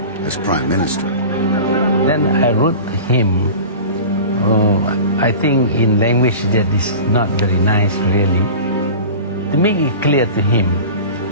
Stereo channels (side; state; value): both; inverted; correlation -0.35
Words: as Prime Minister. Then I wrote to him, I think in language that is not very nice really, to make it clear to him